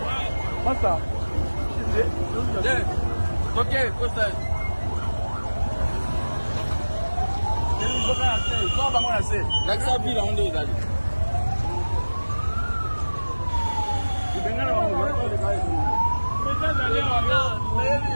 Masa. Ok, cosa. L'accès ville on est d'aller.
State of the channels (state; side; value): inverted; both; correlation -1.00